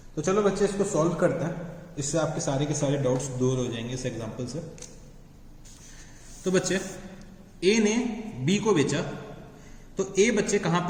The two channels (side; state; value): both; identical; correlation 1.00